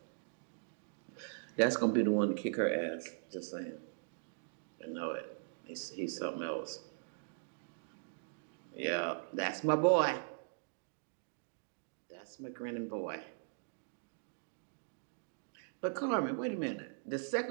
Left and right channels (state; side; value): silent; left; digital silence